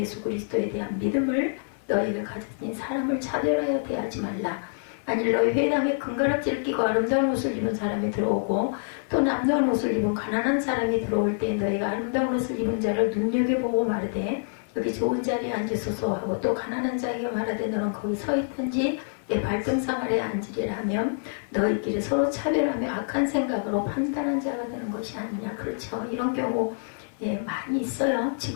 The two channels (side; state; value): right; silent; 55 dB below the other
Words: 그리스도에 대한 믿음을 너희가 가졌으니 사람을 차별하여 대하지 말라. 만일 너희 회당에 금가락지를 끼고 아름다운 옷을 입은 사람이 들어오고 또 남다운 옷을 입은 가난한 사람이 들어올 때 너희가 아름다운 옷을 입은 자를 눈여겨보고 말하되 여기 좋은 자리에 앉으소서 하고 또 가난한 자에게 말하되 너는 거기 서 있든지 내 발등상 아래에 앉으리라 하면 너희끼리 서로 차별하며 악한 생각으로 판단한 자가 되는 것이 아니냐. 그렇죠. 이런 경우 많이 있어요.